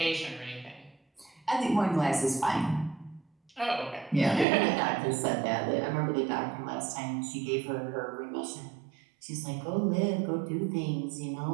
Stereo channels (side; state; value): left; drops out; at 4.5 s